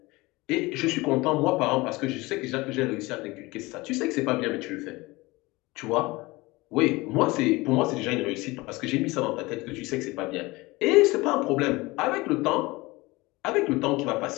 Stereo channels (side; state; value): right; quieter; 22.0 dB